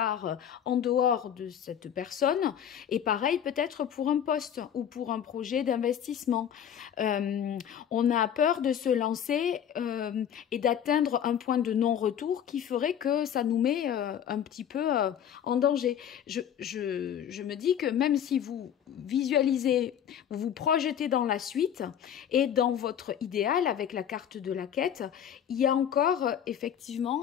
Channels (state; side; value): quieter; right; 9.3 dB